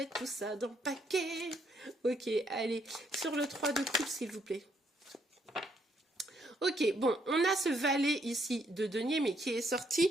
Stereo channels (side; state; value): both; normal; correlation 0.72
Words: tout ça dans le paquet. Ok, allez, sur le 3 de coupe, s'il vous plaît. Ok, bon, on a ce valet ici de denier, mais qui est sorti